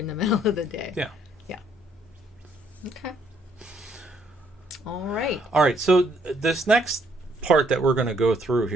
the middle of the day. Yeah. Okay. All right. So this next part that we're going to go through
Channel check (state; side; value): normal; both; correlation 0.68